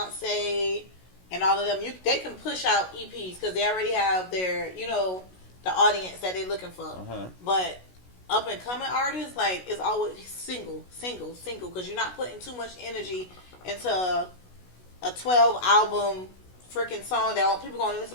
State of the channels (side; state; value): right; late; 16 ms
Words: and all of them, they can push out EPs because they already have their, the audience that they're looking for. Uh-huh. But up and coming artists, like, it's always single, because you're not putting too much energy into a 12 album freaking song that people gonna listen